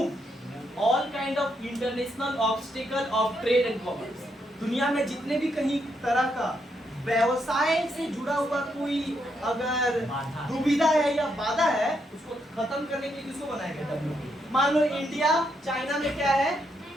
all kind of international obstacle of trade and commerce. दुनिया में जितने भी कहीं तरह का व्यवसाय से जुड़ा हुआ कोई अगर दुविधा है या बाधा है, उसको खत्म करने के लिए किसको बनाया गया, WTO। मान लो इंडिया चाइना में क्या है,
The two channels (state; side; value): normal; both; correlation 0.78